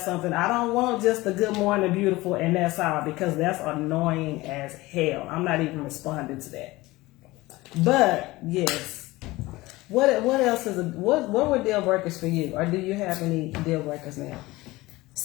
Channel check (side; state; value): right; quieter; 19.9 dB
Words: something. I don't want just a good morning, beautiful, and that's all, because that's annoying as hell. I'm not even responding to that. But yes, what else what were deal breakers for you, or do you have any deal breakers now?